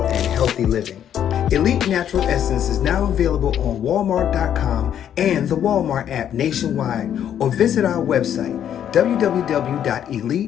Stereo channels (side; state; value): right; quieter; 9.8 dB